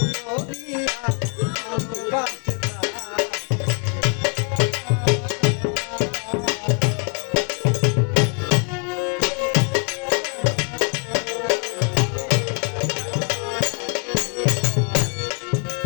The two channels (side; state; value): right; quieter; 39.8 dB